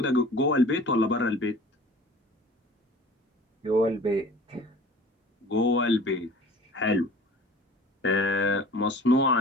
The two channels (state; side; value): normal; both; correlation 0.44